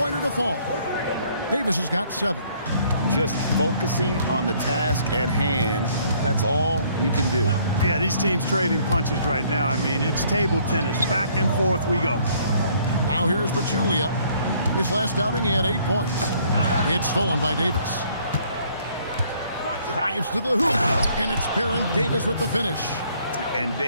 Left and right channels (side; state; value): both; inverted; correlation -0.62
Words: to fall. Davis has got 7. Just focusing on the task at hand. That's all you can do. Yeah, these teams trading punches right now. I mean, it's table tennis. Back and forth we go. Now here's Pachulia. His last outing, he had 8 points. It's stolen by Davis. Drives to the hoop, and it's Baron Davis with the finish. And